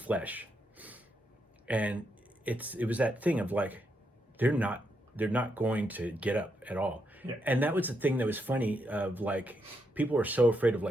And it was that thing of like, they're not going to get up at all. Yeah. And that was the thing that was funny of like, people are so afraid of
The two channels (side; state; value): both; normal; correlation 0.80